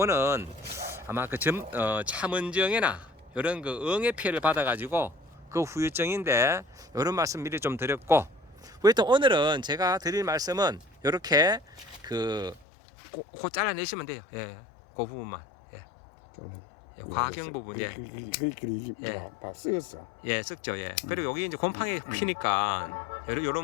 아마 참은정이나 이런 응애 피해를 받아가지고 후유증인데, 이런 말씀 미리 좀 드렸고, 또 오늘은 제가 드릴 말씀은 이렇게 그 잘라내시면 돼요. 예, 그 부분만. 예, 예, 과경 부분. 예, 예. 다 쓰였어. 예, 썩죠. 예. 그리고 여기 이제 곰팡이 피니까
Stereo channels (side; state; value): right; drops out; at 12.7 s